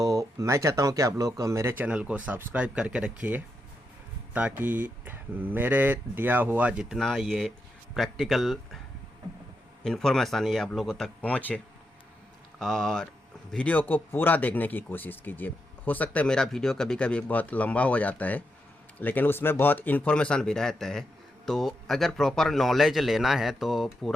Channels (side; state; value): both; normal; correlation 0.84